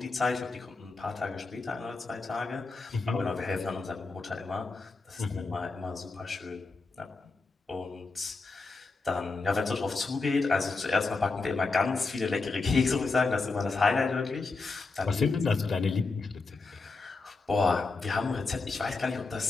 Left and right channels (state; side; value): quieter; right; 3.9 dB